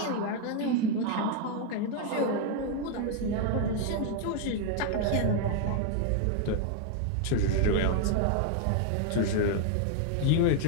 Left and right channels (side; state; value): both; different; correlation 0.01